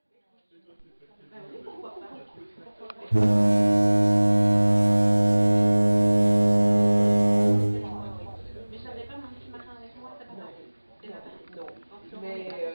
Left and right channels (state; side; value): inverted; both; correlation -1.00